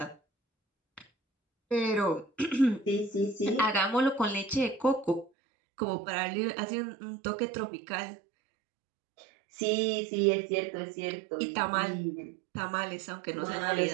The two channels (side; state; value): left; drops out; at 5.3 s